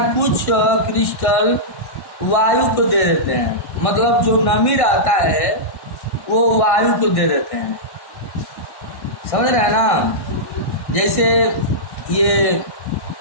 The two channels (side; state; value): right; late; 1.6 ms